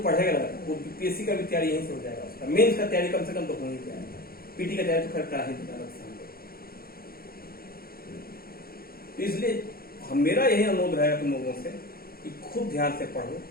पढ़ेगा वो पीएससी का भी तैयारी यहीं से हो जाएगा, उसका मेंस का तैयारी कम से कम तो हो ही जाएगा, पीटी का तैयारी तो खैर करा ही देगा। इसलिए मेरा यही अनुरोध रहेगा तुम लोगों से कि खूब ध्यान से पढ़ो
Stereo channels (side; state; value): right; late; 0.44 ms